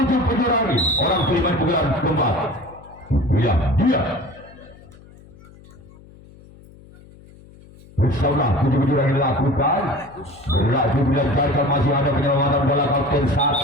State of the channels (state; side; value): noise; left; hum, 23 dB below the sound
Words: penjuru angin. Orang kelima di bulan keempat. Ya, dia. Bersama 7 penjuru angin dilakukan. Berlaku dilancarkan masih ada penyelamatan bola kapten